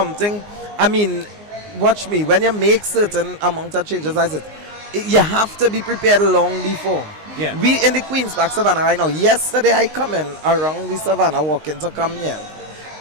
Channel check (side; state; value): left; late; 19 ms